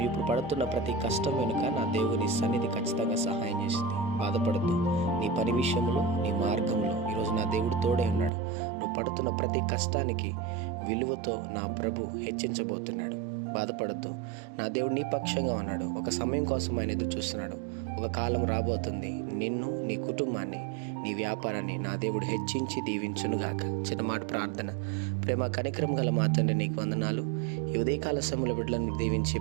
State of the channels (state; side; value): drops out; left; at 8.3 s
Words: ఇప్పుడు పడుతున్న ప్రతి కష్టం వెనుక నా దేవుని సన్నిధి ఖచ్చితంగా సహాయం చేసింది. బాధపడద్దు. నీ పని విషయంలో, నీ మార్గంలో ఈరోజు నా దేవుడు తోడే ఉన్నాడు. నువ్వు పడుతున్న ప్రతి కష్టానికి విలువతో నా ప్రభు హెచ్చించబోతున్నాడు. బాధపడద్దు. నా దేవుడు నీ పక్షంగా ఉన్నాడు. ఒక సమయం కోసం ఆయన ఎదురు చూస్తున్నాడు. ఒక కాలం రాబోతుంది, నిన్ను, నీ కుటుంబాన్ని, నీ వ్యాపారాన్ని నా దేవుడు హెచ్చించి దీవించునుగాక. చిన్నమాట ప్రార్థన. ప్రేమ కనికరం గల మా తండ్రి, నీకు వందనాలు. ఈ ఉదయకాల సమయంలో బిడ్డలను దీవించి